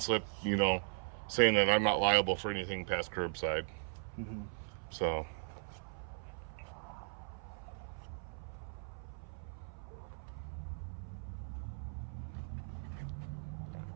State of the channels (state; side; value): silent; left; 52 dB below the other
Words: you know, saying that I'm not liable for anything past curbside. So.